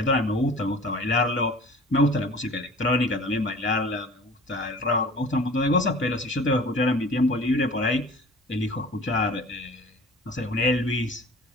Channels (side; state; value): both; normal; correlation 0.43